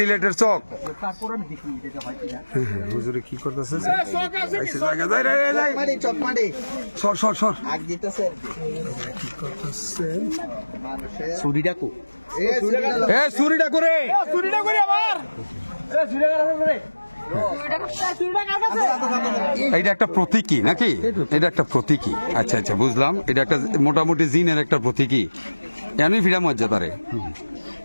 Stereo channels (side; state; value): both; inverted; correlation -1.00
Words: চক তারপর আমি দেখি এটা হয় কিনা হুজুরে কি করতেছে চক মারি সর আগ দিতেছে ছুরিটা কো এ চুরিটা করে এটা একটা প্রতীকী নাকি এটা একটা প্রতীকী আচ্ছা বুঝলাম এটা একটা মোটামুটি জিনের একটা প্রতীকী এমনি ফিরা মর্যাদারে